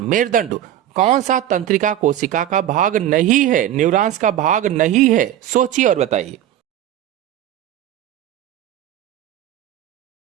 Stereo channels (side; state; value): left; quieter; 11.8 dB